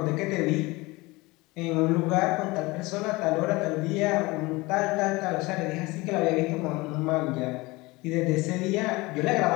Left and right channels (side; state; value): right; quieter; 22.6 dB